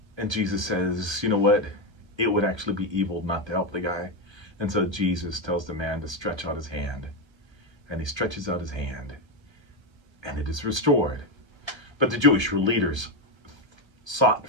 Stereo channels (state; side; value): late; left; 1.1 ms